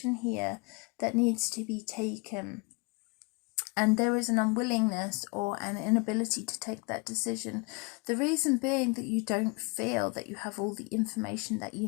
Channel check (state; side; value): quieter; right; 30.4 dB